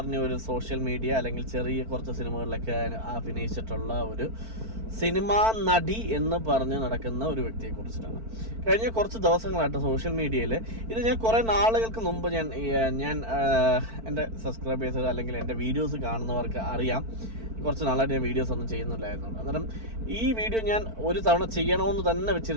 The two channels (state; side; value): late; left; 4.5 ms